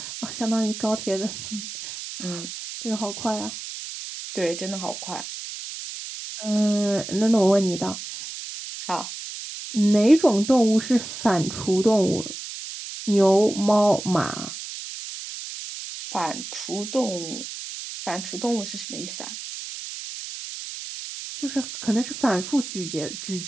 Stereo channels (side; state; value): right; noise; hiss, 9 dB below the sound